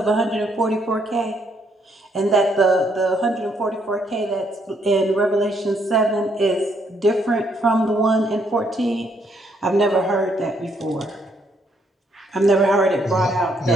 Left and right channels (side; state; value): both; normal; correlation 0.72